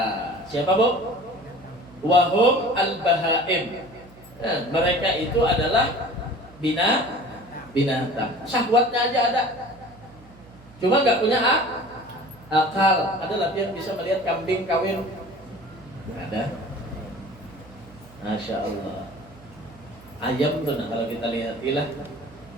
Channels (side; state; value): right; noise; hum, 23 dB below the sound